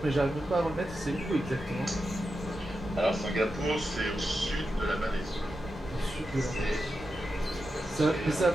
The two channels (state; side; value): normal; both; correlation 0.89